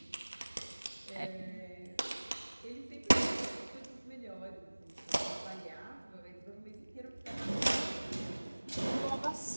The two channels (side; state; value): both; inverted; correlation -1.00